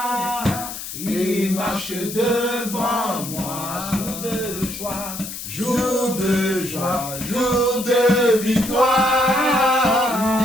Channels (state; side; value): noise; left; hiss, 9 dB below the sound